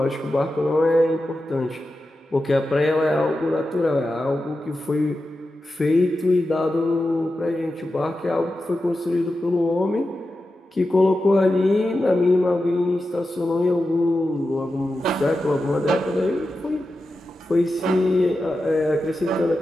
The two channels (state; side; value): normal; both; correlation 0.91